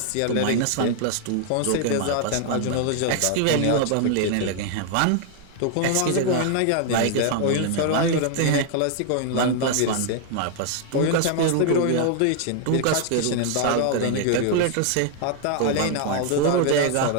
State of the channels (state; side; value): different; both; correlation 0.00